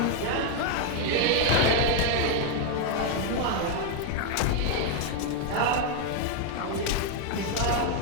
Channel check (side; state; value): both; different; correlation 0.01